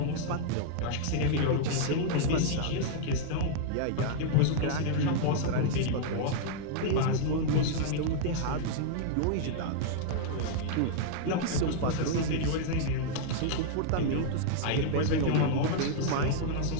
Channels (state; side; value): different; both; correlation -0.01